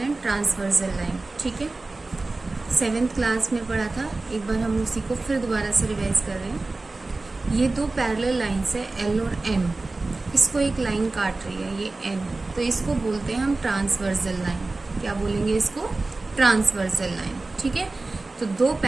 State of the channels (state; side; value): quieter; left; 3.3 dB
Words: and transversal line. ठीक है, 7th क्लास में पढ़ा था, एक बार हम उसी को फिर दोबारा से रिवाइज कर रहे हैं। ये दो पैरेलल लाइन्स है एल और एम, इसको एक लाइन काट रही है ये एन, तो इसको बोलते हैं हम ट्रांसवर्सल लाइन। क्या बोलेंगे इसको? Transversal line. ठीक है, तो दो